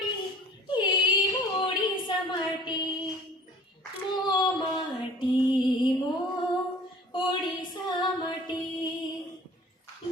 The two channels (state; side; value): normal; both; correlation 0.47